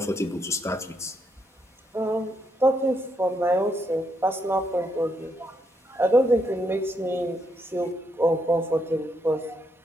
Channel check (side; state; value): both; normal; correlation 0.78